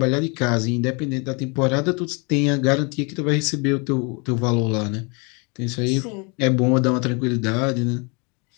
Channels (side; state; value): right; quieter; 32.3 dB